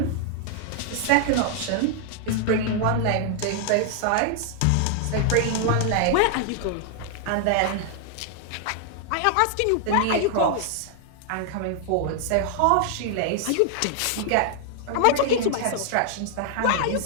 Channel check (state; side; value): different; both; correlation 0.00